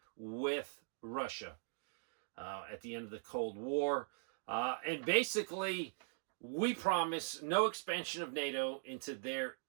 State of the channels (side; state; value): left; silent; digital silence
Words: with Russia at the end of the Cold War. And basically, we promised no expansion of NATO into their